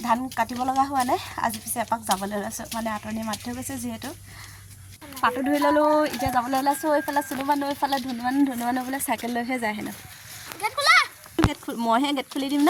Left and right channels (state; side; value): identical; both; correlation 1.00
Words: ধান কাটিব লগা হোৱা নাই। আজি পিছে এপাক যাবলৈ ওলাইছোঁ, মানে আতনি মাতি থৈ গৈছে যিহেতু। পাতো ধুই ল'লোঁ। এতিয়া যাবলৈ ওলাইছোঁ। এইফালে চুনু মানুহ, এইফালে ধুনু মানুহ বোলে চাইকেল লৈহে যায় হেনো। গেট খোলা। মইহে গেট খুলি দিম